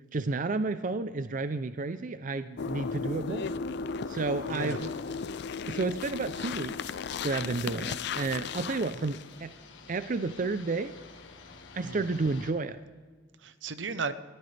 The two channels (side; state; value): both; normal; correlation 0.36